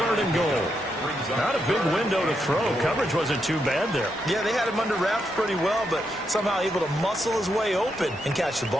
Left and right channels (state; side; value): normal; both; correlation 0.82